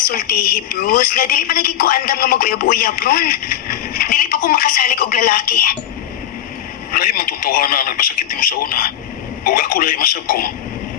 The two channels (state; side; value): quieter; right; 11.3 dB